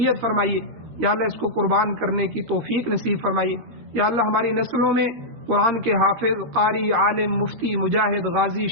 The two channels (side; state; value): left; late; 13 ms